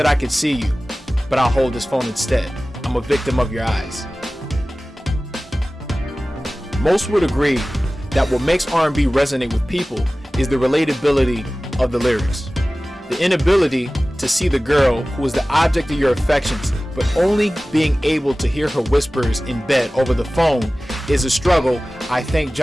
I could see you, but I'll hold this phone instead. I'm a victim of your eyes. Most would agree that what makes R&B resonate with people is the relatability of the lyrics. The inability to see the girl who is the object of your affections, but only being able to hear her whispers in bed over the phone is a struggle I thank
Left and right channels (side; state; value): both; normal; correlation 0.97